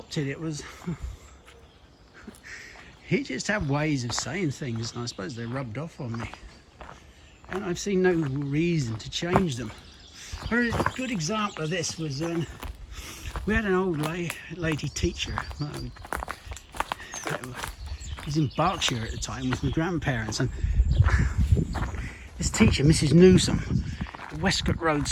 It was, he just had ways of saying things, and I suppose they rubbed off on me. And I've seen no reason to change them. A good example of this was we had an old lady teacher. I was in Berkshire at the time with my grandparents, and this teacher, Mrs. Newsom, at Westcott Road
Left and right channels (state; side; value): identical; both; correlation 1.00